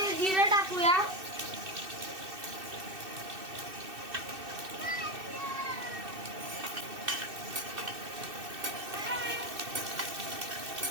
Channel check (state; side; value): late; left; 2.6 ms